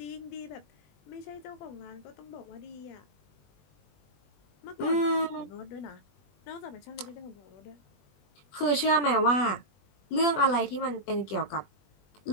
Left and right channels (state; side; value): late; right; 21 ms